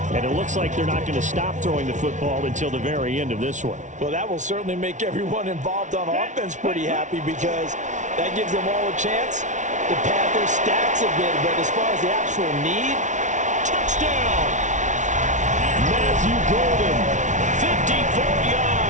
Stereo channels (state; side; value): late; left; 0.36 ms